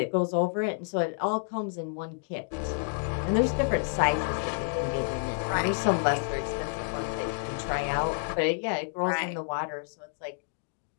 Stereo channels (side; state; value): right; silent; digital silence